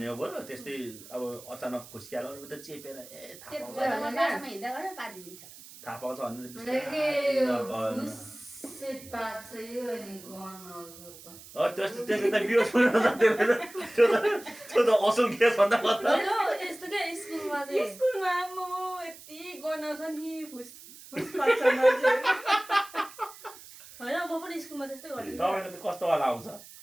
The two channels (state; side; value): noise; right; hiss, 18 dB below the sound